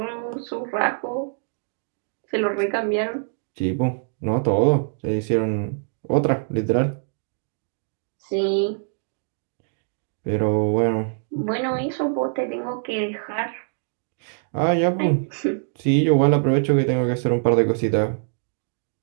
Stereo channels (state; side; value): silent; left; digital silence